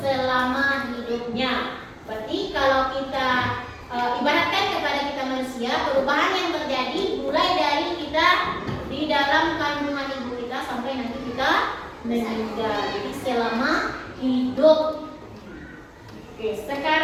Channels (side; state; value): both; identical; correlation 1.00